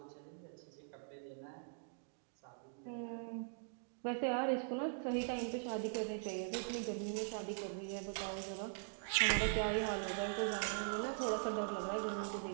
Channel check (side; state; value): left; silent; digital silence